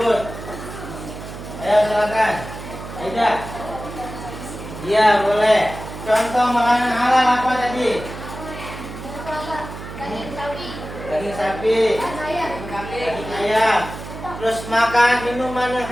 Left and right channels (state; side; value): noise; right; hum, 11 dB below the sound